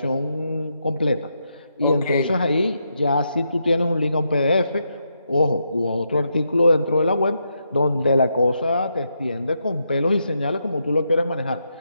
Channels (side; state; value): both; inverted; correlation -0.81